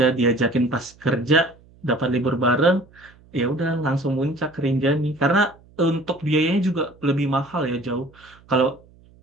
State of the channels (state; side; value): noise; right; hum, 27 dB below the sound